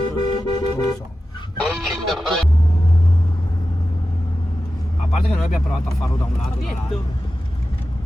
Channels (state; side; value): normal; both; correlation 0.93